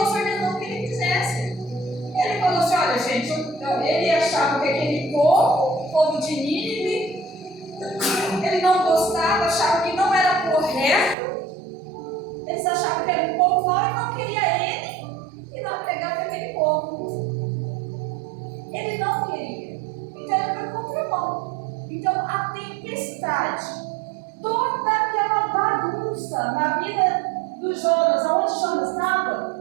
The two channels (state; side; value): drops out; left; at 11.2 s